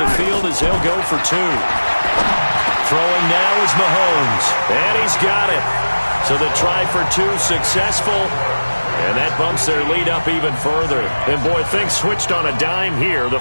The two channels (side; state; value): both; inverted; correlation -1.00